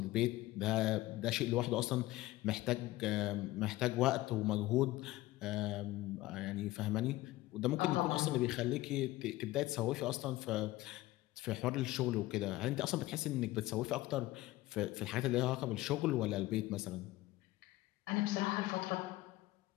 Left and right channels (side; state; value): right; quieter; 17.7 dB